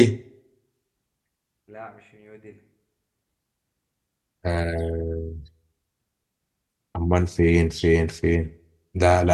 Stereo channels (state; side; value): identical; both; correlation 1.00